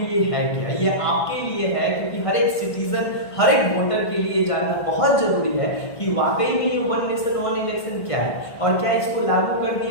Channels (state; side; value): late; right; 1.5 ms